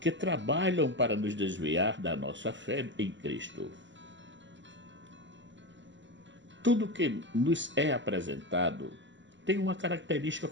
trabalham para nos desviar da nossa fé em Cristo. Tudo que nos é apresentado tem uma característica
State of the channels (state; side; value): late; left; 0.54 ms